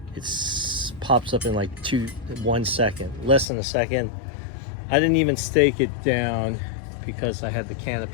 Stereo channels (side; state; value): right; drops out; at 3.5 s